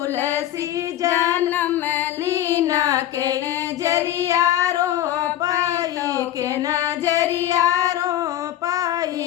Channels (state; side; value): quieter; right; 12.7 dB